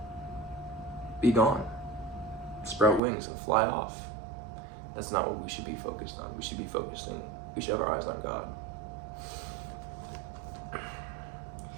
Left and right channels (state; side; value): drops out; left; at 3.0 s